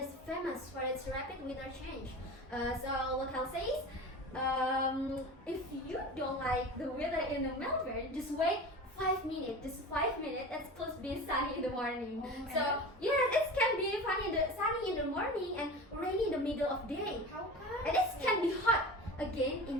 famous for its rapid weather change. So local says, if you don't like the weather in the Melbourne, just wait 5 minutes. Just 5 minutes. It's supposed to be sunny in the morning. Oh, So and- yeah, it can be sunny in the morning and rainy in the middle of day. How come? And it can be hot again in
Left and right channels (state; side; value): normal; both; correlation 0.33